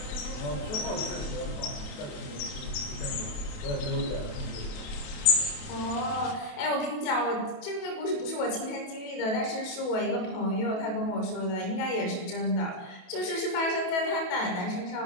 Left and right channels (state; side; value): late; right; 28 ms